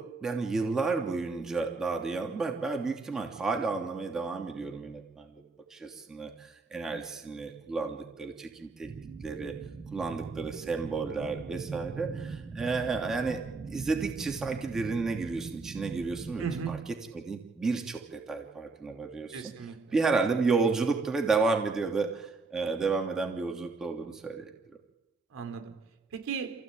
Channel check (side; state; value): left; quieter; 3.9 dB